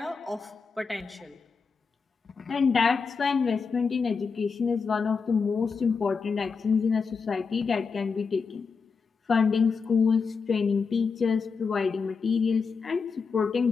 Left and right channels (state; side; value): quieter; right; 5.2 dB